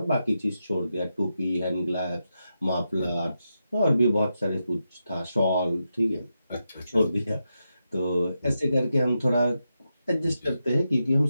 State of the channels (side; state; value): both; inverted; correlation -0.87